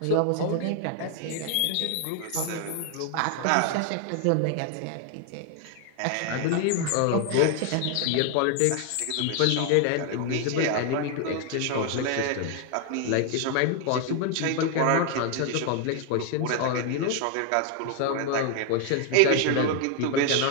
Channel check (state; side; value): different; both; correlation 0.00